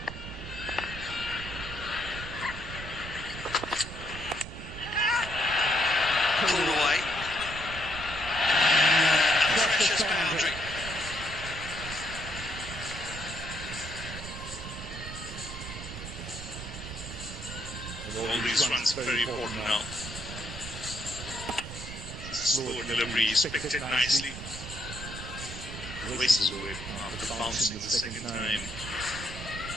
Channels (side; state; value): right; noise; rumble, 10 dB below the sound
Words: Pulled away. Precious boundary. All these runs are very important now. Slow delivery, he's picked it nicely. Races away after bouncing the second time.